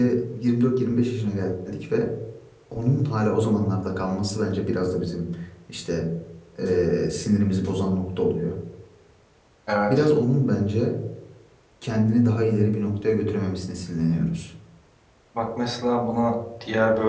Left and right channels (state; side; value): identical; both; correlation 1.00